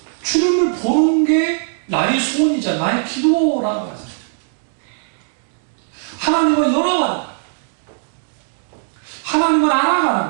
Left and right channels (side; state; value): left; silent; digital silence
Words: 주님을 보는 게 나의 소원이자 나의 기도라고 하잖아요. 하나님과 연합하는 거예요. 하나님을 알아가는